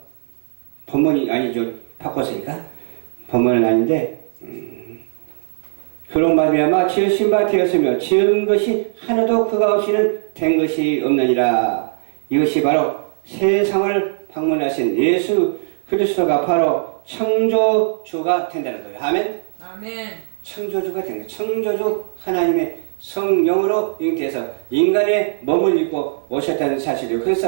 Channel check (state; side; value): silent; left; digital silence